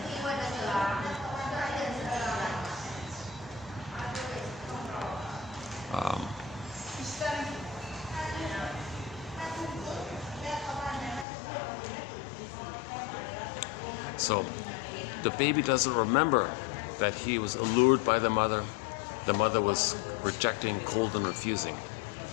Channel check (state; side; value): drops out; right; at 11.2 s